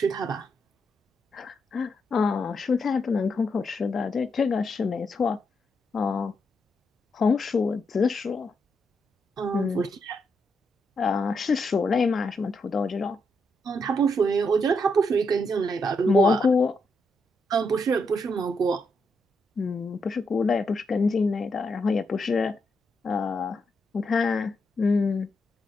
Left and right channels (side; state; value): both; normal; correlation 0.81